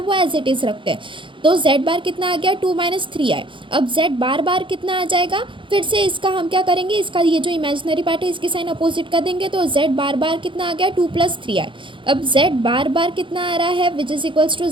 वो एज इट इज़ रखते हैं। तो z बार कितना आ गया, 2 - 3i। अब z बार बार कितना आ जाएगा, फिर से इसका हम क्या करेंगे, इसका ये जो इमेजिनरी पार्ट है इसकी साइन अपोजिट कर देंगे। तो z बार बार कितना आ गया, 2 + 3i। अब z बार बार कितना आ रहा है, which is equals to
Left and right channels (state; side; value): late; left; 0.24 ms